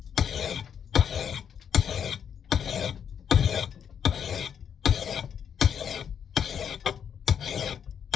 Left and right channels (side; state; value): right; quieter; 8.0 dB